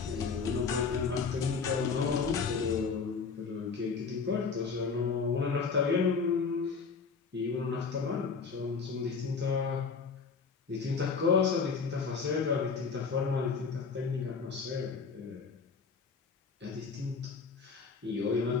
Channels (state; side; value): quieter; right; 5.2 dB